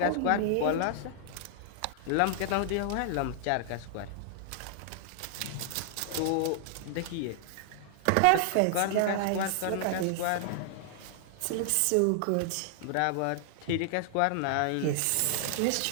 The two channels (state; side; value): different; both; correlation -0.01